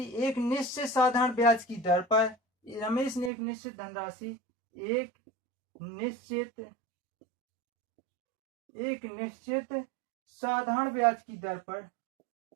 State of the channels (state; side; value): drops out; left; at 3.3 s